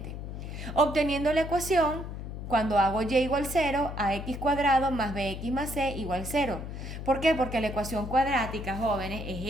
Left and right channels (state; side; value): noise; left; hum, 8 dB below the sound